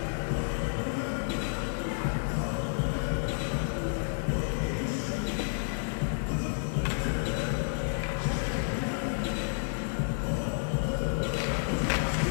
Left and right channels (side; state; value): right; silent; digital silence